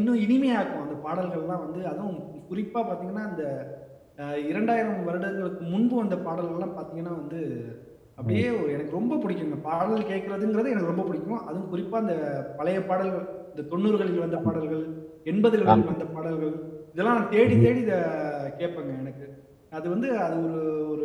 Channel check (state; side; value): identical; both; correlation 1.00